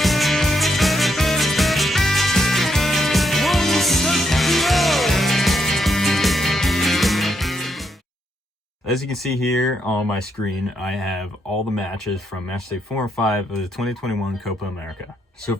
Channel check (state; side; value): normal; both; correlation 0.78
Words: As you can see here on my screen, I have all the matches from Matchday 4 and 5 of the 2021 Copa America.